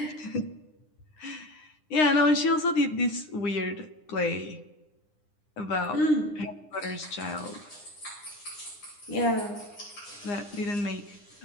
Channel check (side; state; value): right; late; 9.8 ms